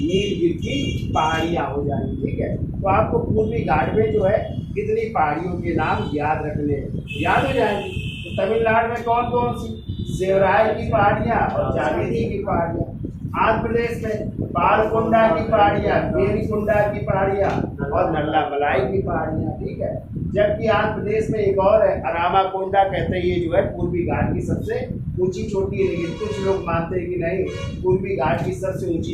नीलगिरी की पहाड़ियाँ हो जाएंगी, ठीक है। तो आपको पूर्वी घाट में जो है कितनी पहाड़ियों के नाम याद रखने हैं, याद हो जाएंगी। तो तमिलनाडु में कौन कौन सी? सेवराय की पहाड़ियाँ और जावेदी की पहाड़ियाँ। आंध्र प्रदेश में पालकोंडा की पहाड़ियाँ, वेलिकोंडा की पहाड़ियाँ और नल्लामलाई की पहाड़ियाँ, ठीक है। जबकि आंध्र प्रदेश में एक और है, अरामाकोंडा कहते हैं, ये जो है पूर्वी घाट की सबसे ऊंची चोटी है। लेकिन कुछ लोग मानते हैं कि नहीं, पूर्वी घाट की सबसे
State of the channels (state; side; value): identical; both; correlation 1.00